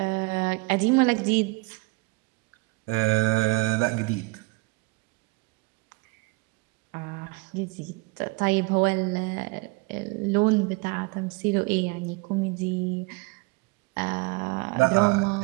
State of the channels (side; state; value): left; quieter; 26.5 dB